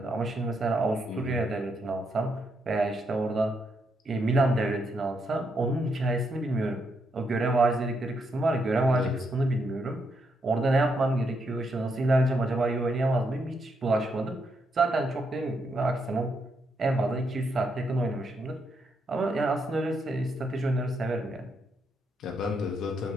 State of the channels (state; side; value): normal; both; correlation 0.79